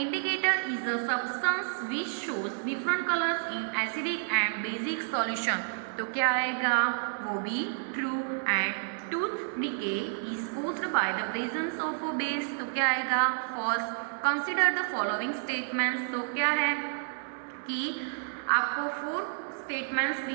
indicator is a substance which shows different colours in acidic and basic solution तो क्या आएगा, वो भी true. And tooth decay is caused by the presence of a base तो क्या आएगा, false. Consider the following statements तो क्या है कि आपको 4 स्टेटमेंट्स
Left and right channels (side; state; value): left; silent; digital silence